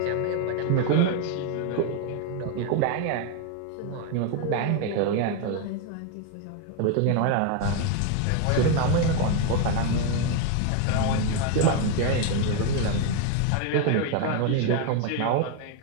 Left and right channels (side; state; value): both; different; correlation 0.01